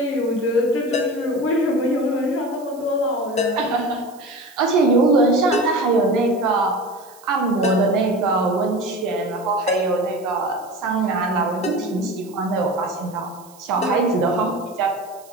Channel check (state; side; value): noise; right; hiss, 25 dB below the sound